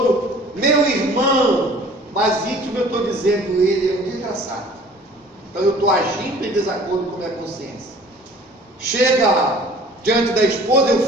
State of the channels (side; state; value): both; normal; correlation 0.49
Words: meu irmão, mas íntimo eu estou dizendo, ele é um desgraçado. Então eu estou agindo em desacordo com a minha consciência. Chega diante da esposa, eu